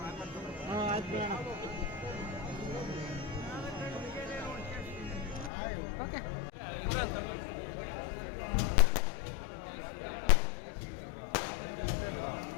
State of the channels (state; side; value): drops out; right; at 5.5 s